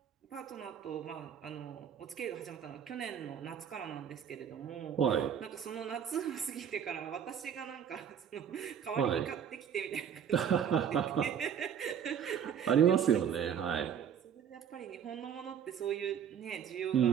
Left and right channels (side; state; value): left; quieter; 8.4 dB